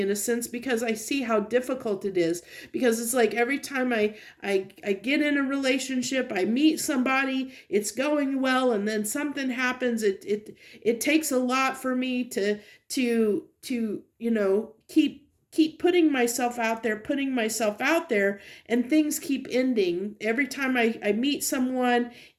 a sense, because I see how difficult it is. Because it's like every time I get in a relationship, I meet somebody, it's going well, and then something happens. It takes a lot for me to keep keep putting myself out there, and things keep ending. Every time I meet someone,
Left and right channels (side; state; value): both; identical; correlation 1.00